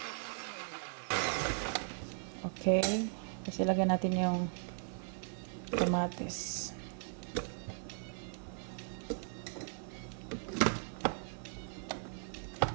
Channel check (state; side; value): silent; left; 52 dB below the other